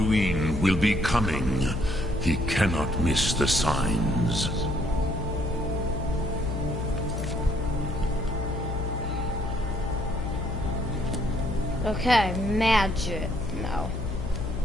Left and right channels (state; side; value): noise; left; hum, 4 dB below the sound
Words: will be coming. He cannot miss the signs. Okay, magic. No.